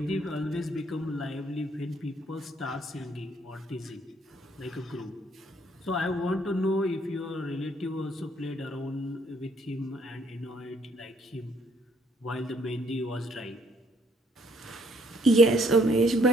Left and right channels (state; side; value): normal; both; correlation 0.66